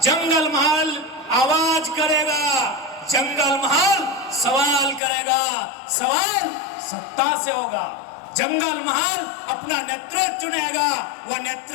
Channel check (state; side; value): drops out; right; at 5.0 s